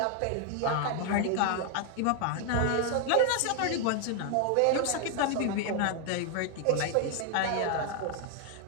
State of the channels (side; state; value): both; different; correlation 0.00